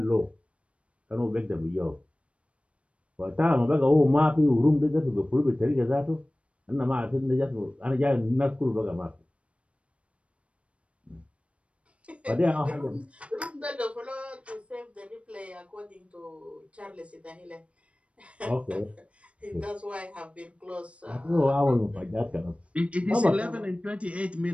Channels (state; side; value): late; left; 0.062 ms